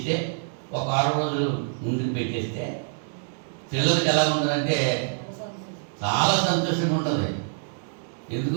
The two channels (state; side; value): silent; left; digital silence